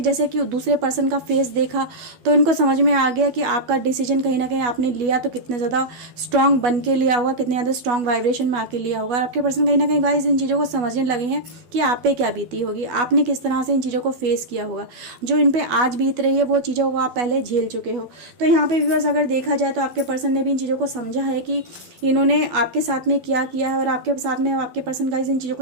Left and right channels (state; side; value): late; left; 12 ms